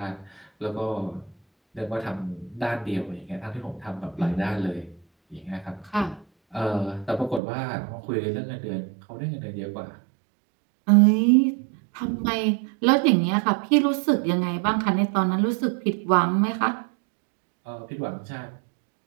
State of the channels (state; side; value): drops out; left; at 7.4 s